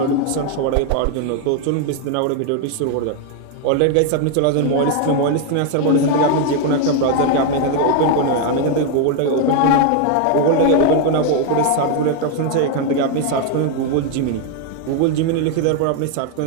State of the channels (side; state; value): both; different; correlation 0.01